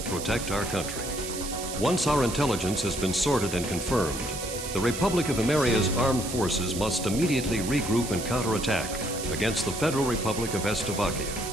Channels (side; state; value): right; noise; hiss, 8 dB below the sound